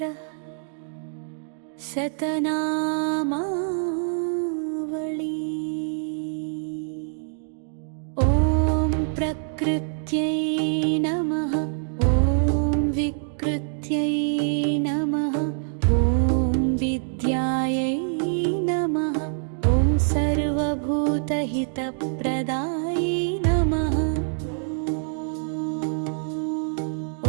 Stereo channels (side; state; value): left; silent; digital silence